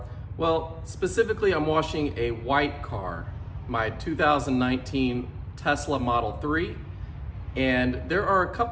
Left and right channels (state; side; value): identical; both; correlation 1.00